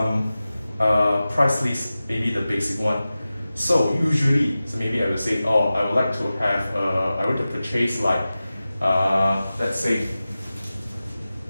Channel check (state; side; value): inverted; both; correlation -0.95